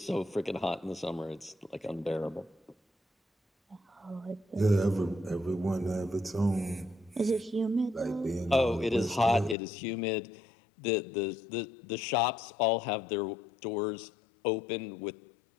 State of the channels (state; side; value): drops out; right; at 9.6 s